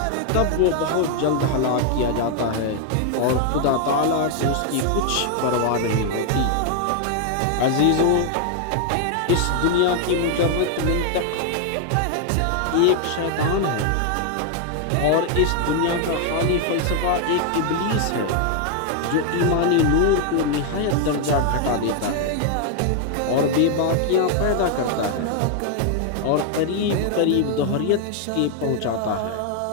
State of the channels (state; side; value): different; both; correlation 0.00